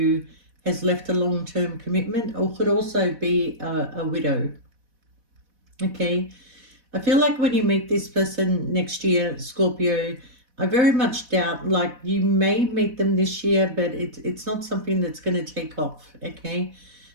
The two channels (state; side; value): late; left; 4.1 ms